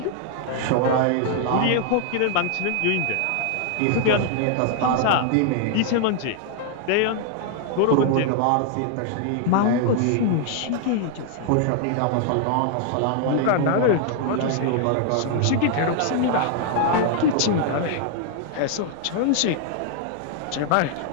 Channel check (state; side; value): different; both; correlation 0.00